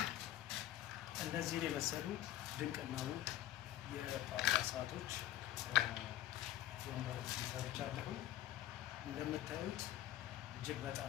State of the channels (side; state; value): right; quieter; 13.8 dB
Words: እነዚህን የመሰሉ ድንቅና ውብ የጳጳሳቶች ወንበሮች ሰርቻለሁ። እንደምታዩት እጅግ